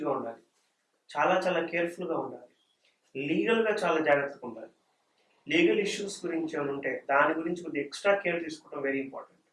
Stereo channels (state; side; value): identical; both; correlation 1.00